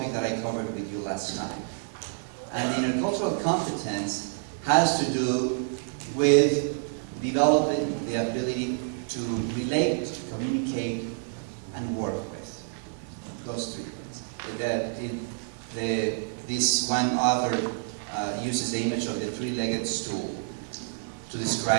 that I covered with you last time. And intercultural competence has to do with developing the ability to relate, communicate, and work with. Those three things. This one author uses the image of the three-legged stool to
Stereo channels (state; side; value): silent; left; digital silence